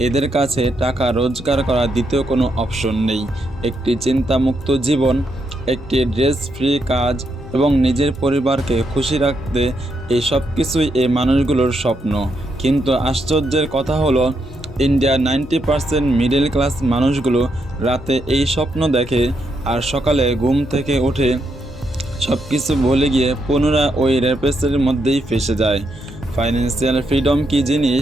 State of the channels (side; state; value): both; normal; correlation 0.80